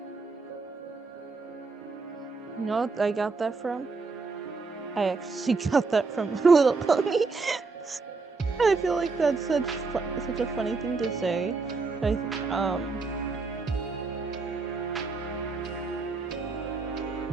You know what I got that from? I actually got that from My Little Pony. I feel like that's such a funny thing to say. I think from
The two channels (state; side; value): quieter; left; 4.1 dB